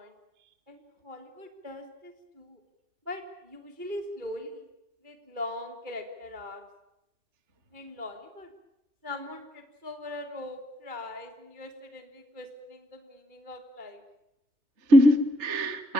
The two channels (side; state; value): left; late; 2.3 ms